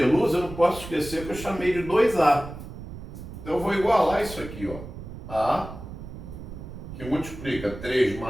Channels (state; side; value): noise; right; rumble, 12 dB below the sound